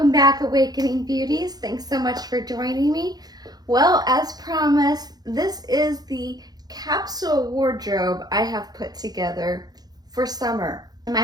back, Awakening Beauties. Thanks so much for joining me. Well, as promised, this is the capsule wardrobe I have put together for summer. In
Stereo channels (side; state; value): left; late; 0.19 ms